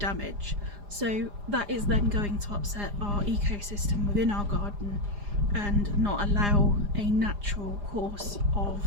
So that is then going to upset our ecosystem within our garden and not allow a natural course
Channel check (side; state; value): left; late; 4.9 ms